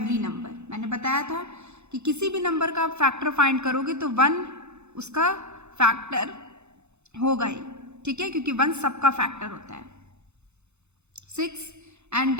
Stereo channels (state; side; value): late; left; 0.81 ms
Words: number. मैंने बताया था कि किसी भी नंबर का आप फैक्टर फाइंड करोगे तो 1 उसका फैक्टर होगा ही, ठीक है, क्योंकि 1 सबका फैक्टर होता है। 6, and